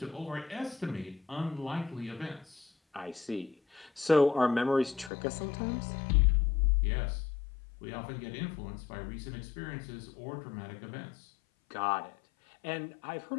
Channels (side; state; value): right; drops out; at 5.1 s